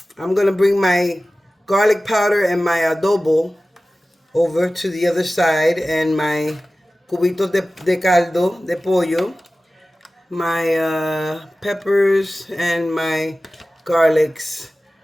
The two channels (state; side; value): normal; both; correlation 0.96